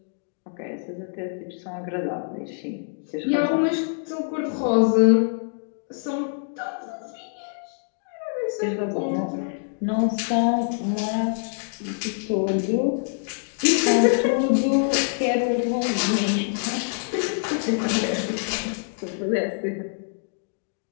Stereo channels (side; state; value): right; silent; digital silence